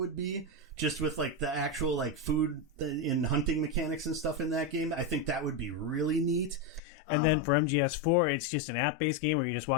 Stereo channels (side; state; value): right; drops out; at 6.8 s